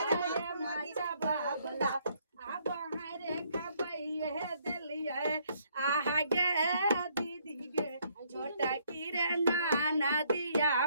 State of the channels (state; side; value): inverted; both; correlation -0.68